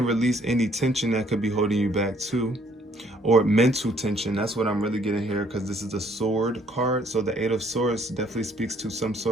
release any tension that could be holding you back too. Or mental tension. That's what I'm really getting here, because this is a sword card. So the 8 of Swords definitely speaks to some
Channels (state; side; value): normal; both; correlation 0.63